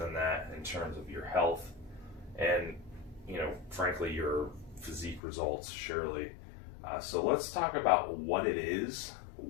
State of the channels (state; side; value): drops out; right; at 5.2 s